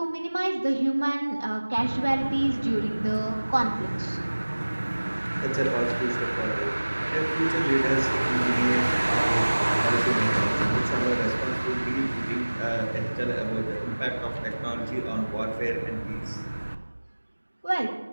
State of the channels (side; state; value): both; inverted; correlation -1.00